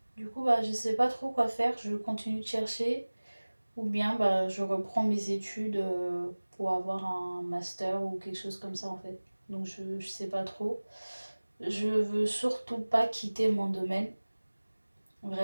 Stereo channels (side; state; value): both; inverted; correlation -1.00